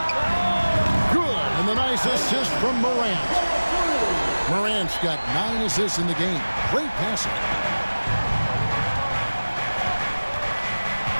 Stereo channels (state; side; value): inverted; both; correlation -1.00